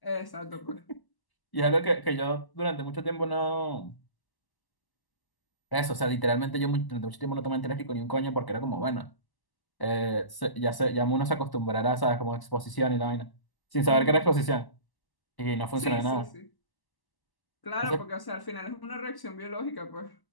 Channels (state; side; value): late; right; 1.0 ms